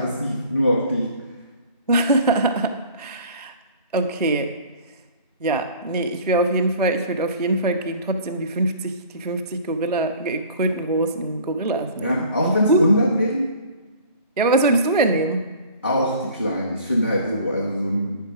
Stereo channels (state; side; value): inverted; both; correlation -0.48